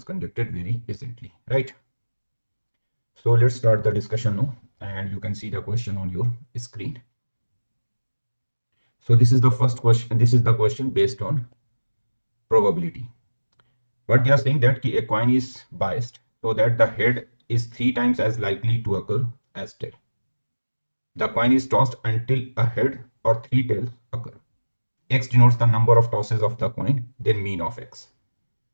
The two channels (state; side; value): inverted; both; correlation -1.00